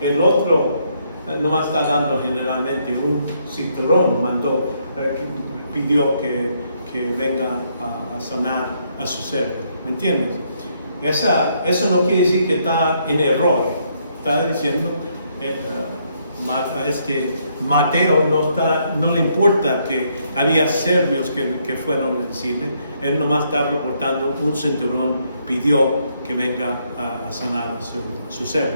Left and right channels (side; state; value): both; inverted; correlation -0.73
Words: otro nomás está dando generalmente un cinturón, pidió que venga a sanar a su ser. ¿Me entiendes? Eso no quiere decir que está en error. Está diciendo, Mateo no le importa que había serbios que fueron a decirle. Él nomás está reportando un cinturón, pidió que venga a sanar a su